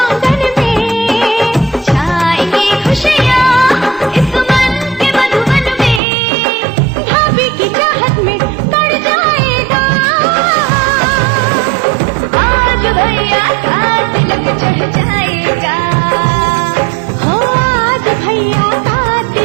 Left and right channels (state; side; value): drops out; left; at 6.0 s